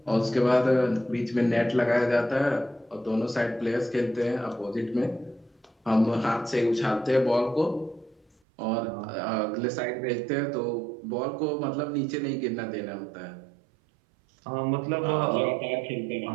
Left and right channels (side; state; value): left; drops out; at 8.2 s